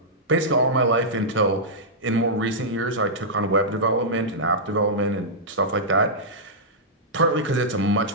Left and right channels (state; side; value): normal; both; correlation -0.11